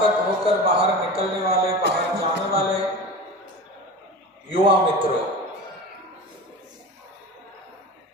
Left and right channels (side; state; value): both; normal; correlation 0.31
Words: होकर बाहर निकलने वाले, बाहर जाने वाले युवा मित्रों,